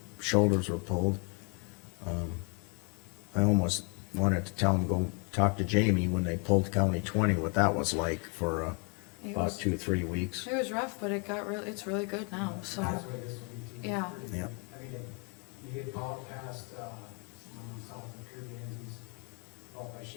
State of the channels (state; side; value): quieter; right; 36.1 dB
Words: shoulders were pulled. I almost wanted to tell them, go talk to Jamie when they pulled County 20, what that was like for, It about was, 2-3 weeks. it was rough, but it's really good now, so, That's what this will be too. yeah. Yeah. I mean, you get out past, south of Kirby Enzies, out by